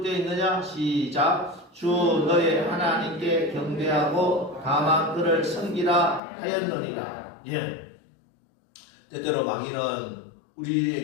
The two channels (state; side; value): drops out; right; at 6.2 s